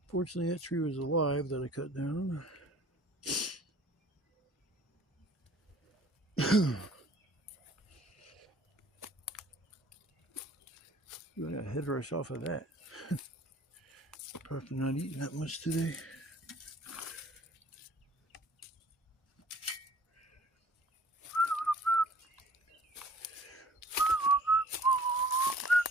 Fortunately, that tree was alive that I cut down. I got a head rush off of that. Probably not eating that much today.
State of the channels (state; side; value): normal; both; correlation 0.52